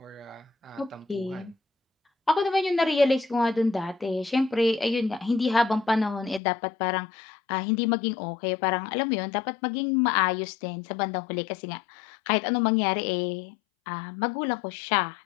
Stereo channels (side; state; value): right; drops out; at 6.4 s